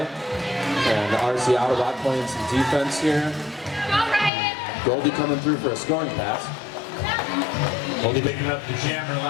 and RC Autobot playing some defense here. Goldie coming through for a scoring pass. Goldie picking up the jammer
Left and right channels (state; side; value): drops out; right; at 4.3 s